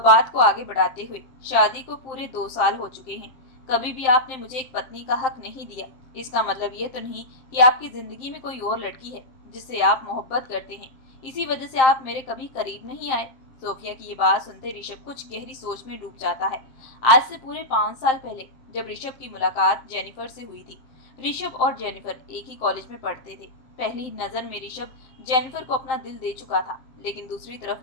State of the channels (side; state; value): right; late; 7.6 ms